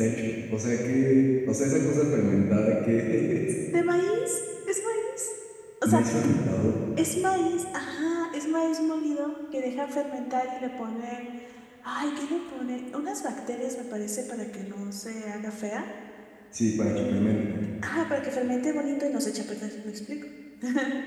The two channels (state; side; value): identical; both; correlation 1.00